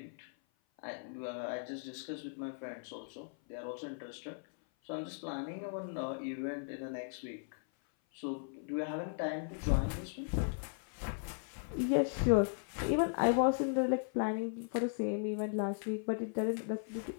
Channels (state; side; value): silent; right; 53 dB below the other